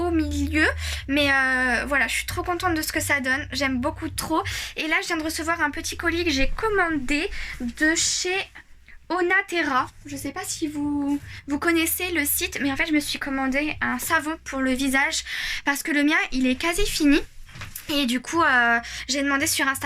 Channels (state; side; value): identical; both; correlation 1.00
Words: milieu, mais voilà, je suis trop contente de ce que ça donne, j'aime beaucoup trop. Et là je viens de recevoir un petit colis que j'ai commandé de chez Onaterra. Je sais pas si vous connaissez le site, mais en fait je me suis commandé un savon pour le visage parce que le mien il est quasi fini. Et du coup j'ai demandé sur